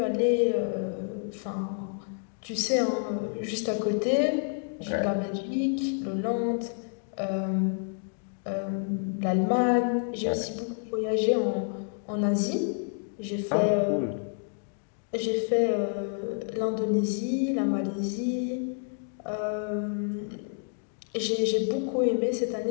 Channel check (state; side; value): silent; right; 59 dB below the other